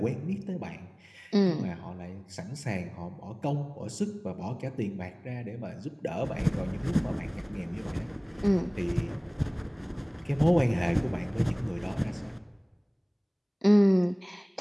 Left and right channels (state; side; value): identical; both; correlation 1.00